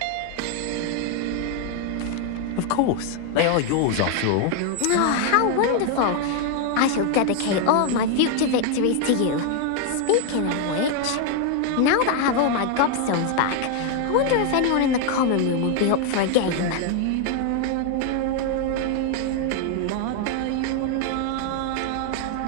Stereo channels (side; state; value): both; different; correlation 0.01